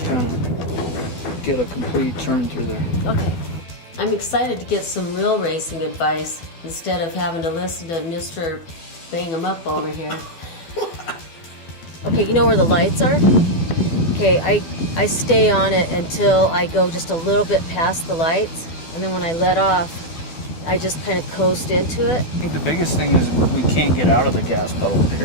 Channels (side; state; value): right; late; 12 ms